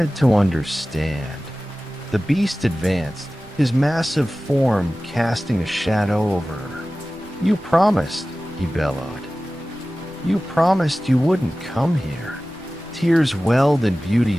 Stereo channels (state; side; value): noise; right; rumble, 25 dB below the sound